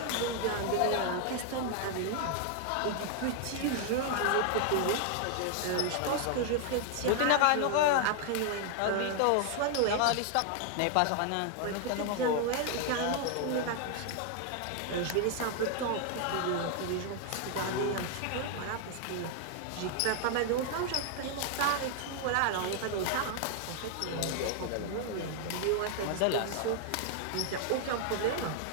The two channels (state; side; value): different; both; correlation 0.00